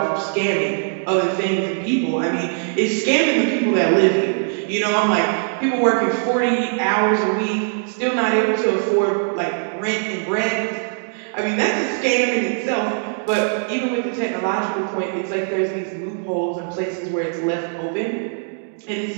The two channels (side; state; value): left; silent; digital silence